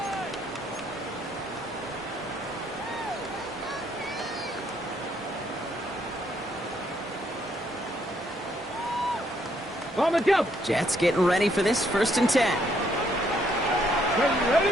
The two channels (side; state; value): both; normal; correlation 0.70